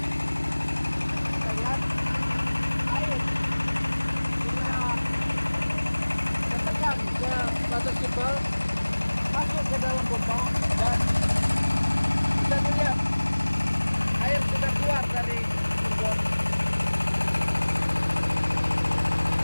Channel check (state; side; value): inverted; both; correlation -1.00